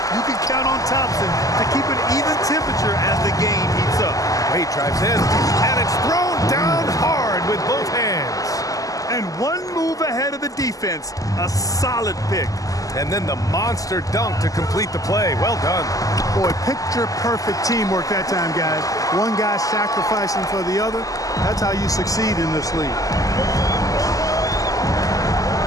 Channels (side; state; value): right; late; 0.17 ms